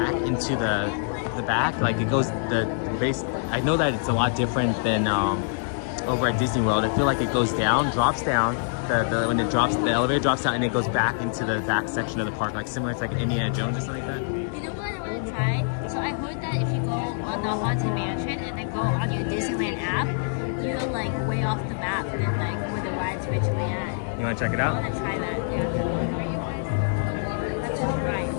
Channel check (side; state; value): right; silent; 58 dB below the other